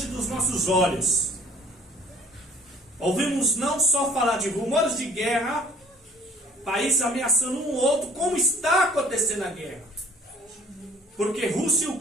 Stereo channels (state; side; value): normal; both; correlation 0.53